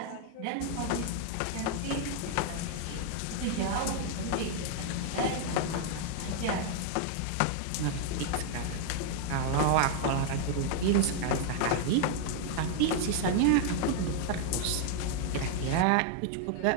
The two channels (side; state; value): both; different; correlation 0.00